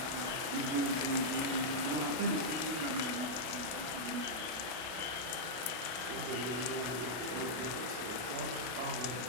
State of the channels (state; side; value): late; left; 32 ms